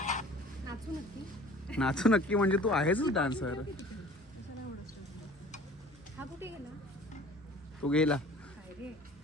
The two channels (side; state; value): both; normal; correlation 0.47